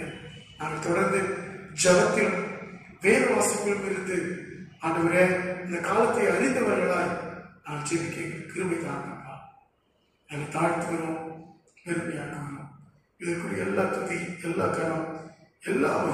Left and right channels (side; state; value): both; identical; correlation 1.00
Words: நாங்கள் தொடர்ந்து ஜபத்திலும் வேத வாசிப்பிலும் இருந்து ஆண்டவரே இந்த காலத்தை அறிந்தவர்களாய் நான் ஜெபிக்க கிருபை தாங்கப்பா. நாங்கள் தாழ்த்துகிறோம், பெருமையாக்குகிறோம். இதற்குரிய எல்லா துதி, எல்லா கரம், எல்லா